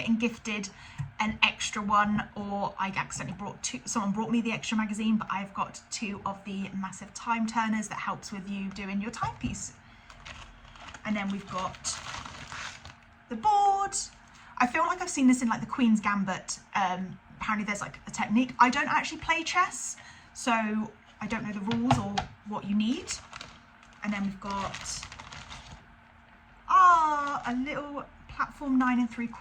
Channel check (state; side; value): identical; both; correlation 1.00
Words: gifted an extra one, or I accidentally brought 2. Someone brought me the extra magazine, but I've got 2 of the massive time turners that helps with you doing your timepiece. And then we've got the board. I feel like I've seen this in like the Queen's Gambit. Apparently there's like a technique. I don't actually play chess, so I don't know the rules or what you need. And then we've got a little platform 9